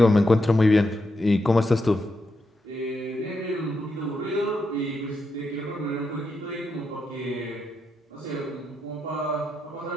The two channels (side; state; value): both; normal; correlation 0.84